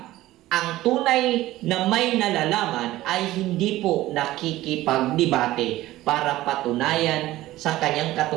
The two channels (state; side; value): quieter; left; 16.2 dB